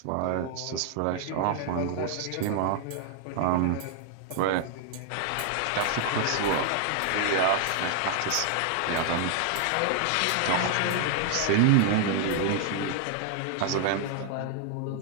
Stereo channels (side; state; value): both; different; correlation 0.00